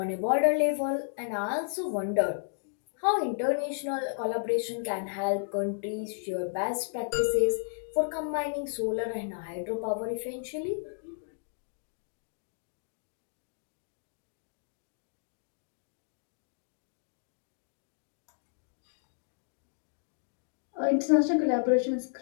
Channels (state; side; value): silent; right; digital silence